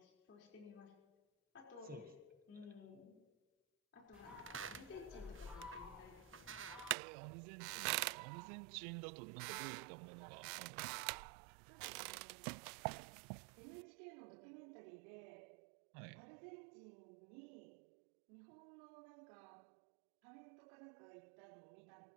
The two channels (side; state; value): left; drops out; at 7.0 s